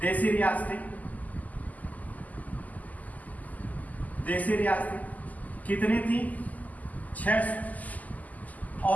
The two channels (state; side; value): late; right; 0.079 ms